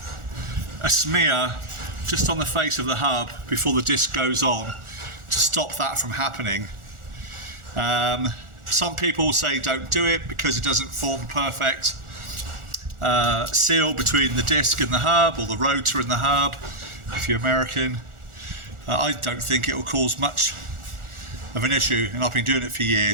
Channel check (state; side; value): late; left; 1.4 ms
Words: a smear, just on the face of the hub before the disc goes on to stop that from happening. Some people say don't do it because it doesn't form perfect seal between the disc and the hub, or the rotor and the hub, if you're American. I don't think it will cause much of an issue, and I've been doing it for